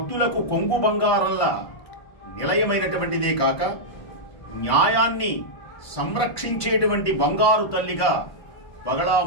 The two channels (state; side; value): late; right; 1.5 ms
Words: కొంగు బంగారంలా నిలయమైనటువంటిదే కాక న్యాయాన్ని సంరక్షించేటువంటి బంగారు తల్లిగా